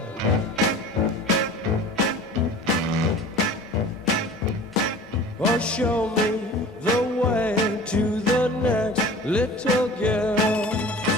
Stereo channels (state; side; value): normal; both; correlation 0.41